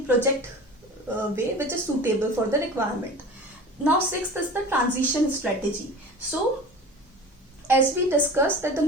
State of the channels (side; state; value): both; normal; correlation 0.37